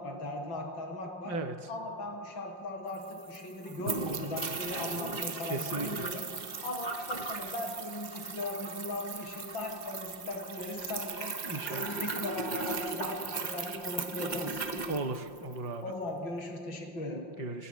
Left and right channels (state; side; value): late; right; 5.7 ms